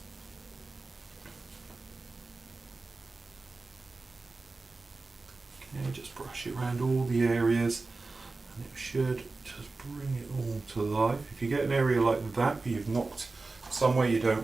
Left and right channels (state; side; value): quieter; left; 3.6 dB